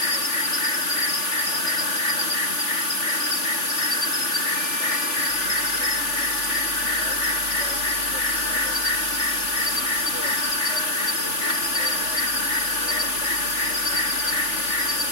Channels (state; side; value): late; right; 3.4 ms